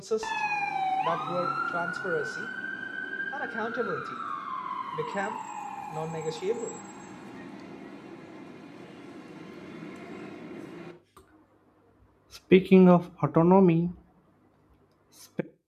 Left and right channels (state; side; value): identical; both; correlation 1.00